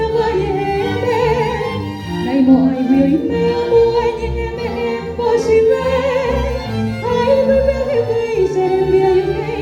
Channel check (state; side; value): identical; both; correlation 1.00